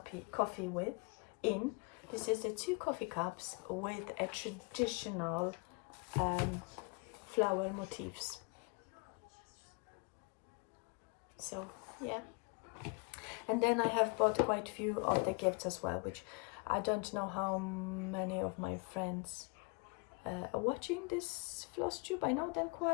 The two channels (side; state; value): right; quieter; 32.2 dB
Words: with in. This is the 2 coffee cups with a traditional flower motifs. So yeah. And then I have bought quite a few of the gifts as well, which I don't know how many of my friends are watching this Flosstube. I know that